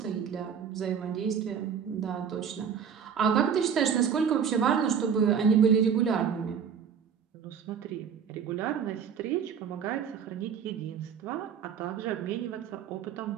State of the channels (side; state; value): left; quieter; 7.4 dB